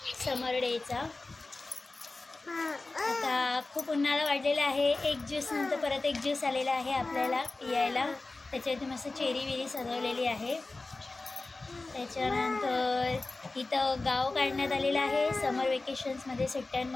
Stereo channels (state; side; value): quieter; right; 3.3 dB